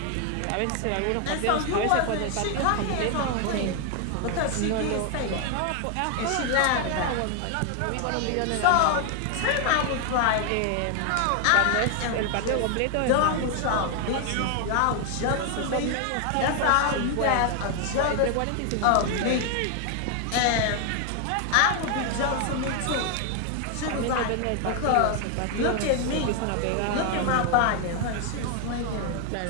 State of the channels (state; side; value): different; both; correlation 0.00